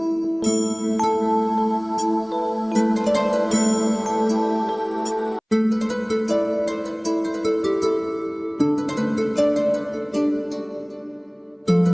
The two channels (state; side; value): identical; both; correlation 1.00